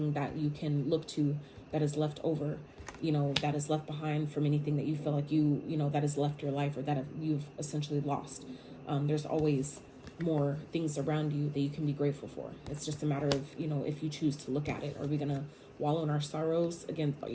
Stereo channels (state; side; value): identical; both; correlation 1.00